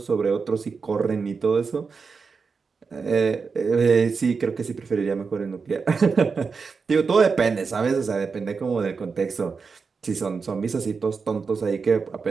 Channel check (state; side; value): quieter; left; 5.1 dB